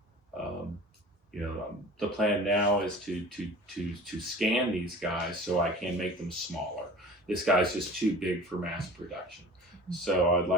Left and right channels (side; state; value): both; normal; correlation 0.40